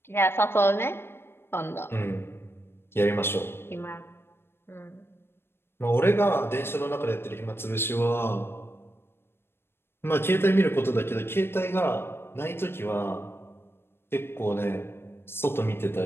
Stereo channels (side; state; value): right; late; 0.11 ms